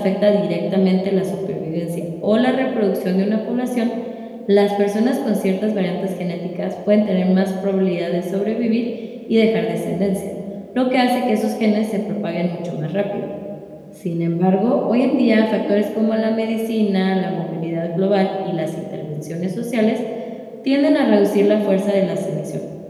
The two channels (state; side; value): identical; both; correlation 1.00